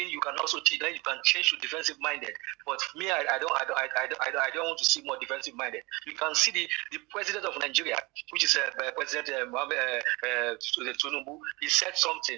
you can also cheat. Then you can change to defensive minded. But for me, I don't want to see more defensive minded. You can see the president of Nigeria, which is President Tinubu. He said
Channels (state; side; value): quieter; left; 24.6 dB